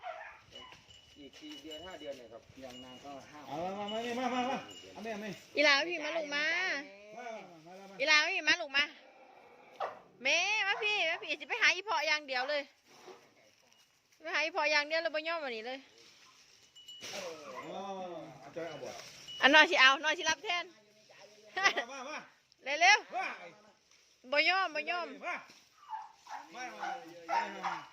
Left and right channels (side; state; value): both; identical; correlation 1.00